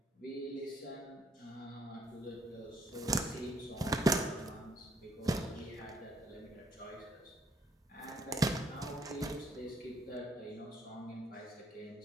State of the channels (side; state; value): both; normal; correlation 0.67